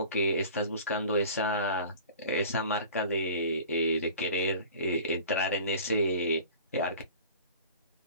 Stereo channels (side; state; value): both; inverted; correlation -0.42